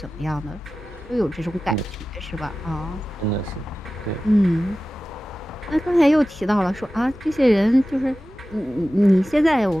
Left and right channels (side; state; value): both; normal; correlation 0.95